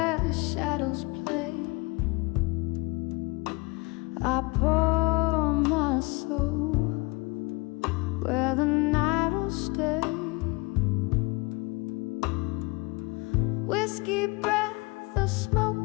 shadows play, I pour my soul where the night will stay. Whiskey breath, a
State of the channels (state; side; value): quieter; right; 26.4 dB